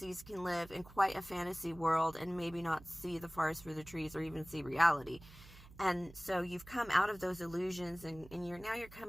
can live in quite a fantasy world and maybe not see the forest for the trees or even see reality. And so you've come out of those illusions, and you're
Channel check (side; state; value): right; noise; hum, 19 dB below the sound